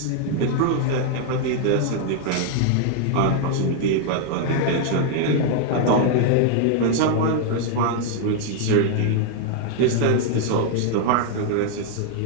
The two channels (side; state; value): both; different; correlation 0.00